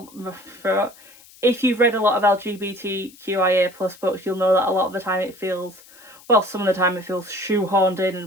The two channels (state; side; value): noise; left; hiss, 24 dB below the sound